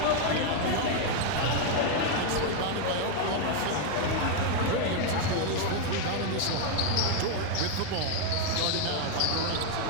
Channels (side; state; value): both; different; correlation 0.01